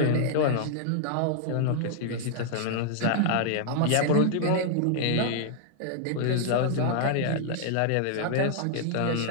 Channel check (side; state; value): both; different; correlation -0.01